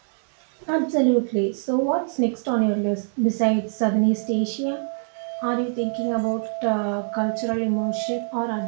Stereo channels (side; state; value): left; silent; digital silence